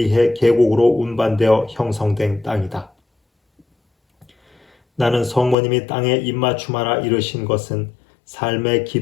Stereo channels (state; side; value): drops out; right; at 5.6 s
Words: 계곡으로 운반되어 형성된 땅이다. 나는 성모님이 땅에 입맞춤하라 이르신 것은 삶의